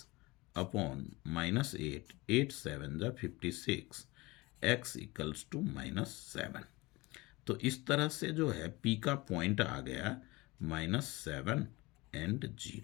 अपॉन -8 8 7 जा 56, x इक्वल्स टू -7। तो इस तरह से जो है p का पॉइंट आ गया -7 एंड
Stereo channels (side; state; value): right; quieter; 22.5 dB